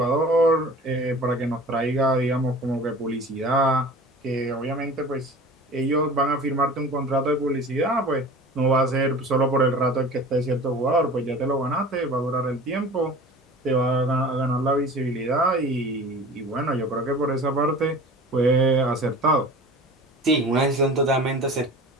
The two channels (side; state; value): both; normal; correlation 0.40